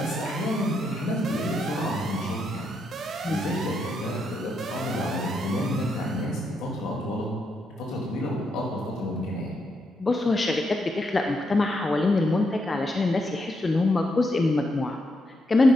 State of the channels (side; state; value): both; normal; correlation 0.80